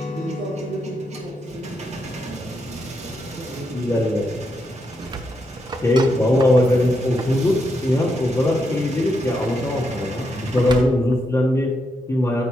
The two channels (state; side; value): normal; both; correlation 0.82